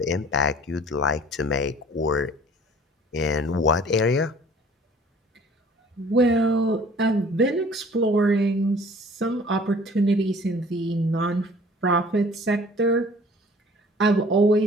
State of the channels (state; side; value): normal; both; correlation 0.51